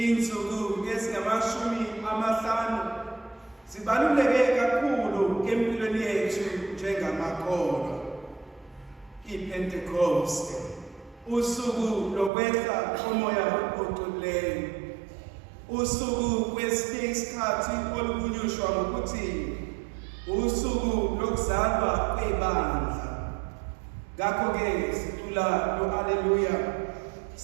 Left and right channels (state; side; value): drops out; left; at 12.3 s